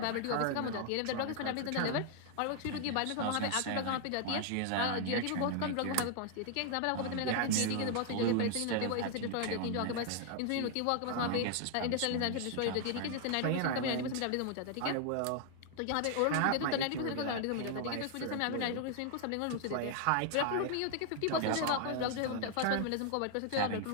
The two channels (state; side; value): different; both; correlation 0.00